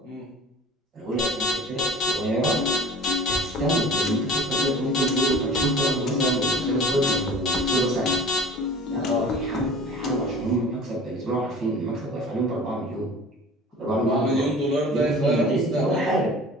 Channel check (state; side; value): normal; both; correlation 0.43